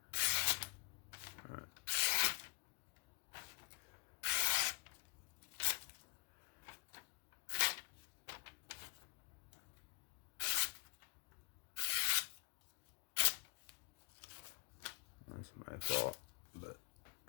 that's all. But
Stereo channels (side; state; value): right; quieter; 30.4 dB